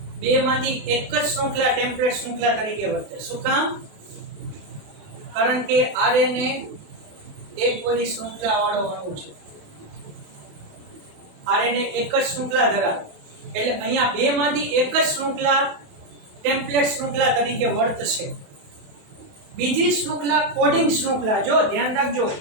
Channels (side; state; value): left; late; 28 ms